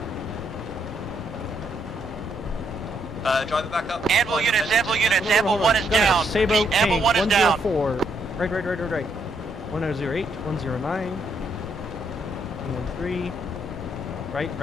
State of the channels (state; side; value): normal; both; correlation 0.74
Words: Drive it back up. Amble units, Amble 1 is down. Sabo Amble 1 is down. 104. Right. 1008, 109, 113. Right.